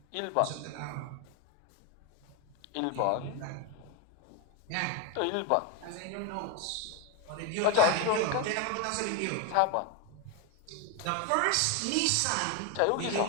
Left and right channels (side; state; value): both; different; correlation 0.02